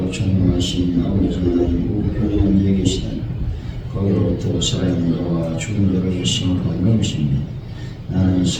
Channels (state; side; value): identical; both; correlation 1.00